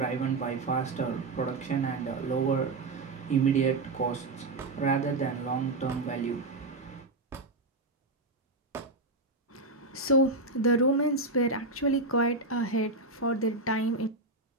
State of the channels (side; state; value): left; quieter; 3.1 dB